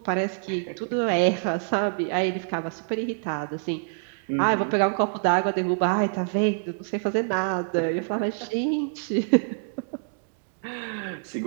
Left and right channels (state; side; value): silent; left; digital silence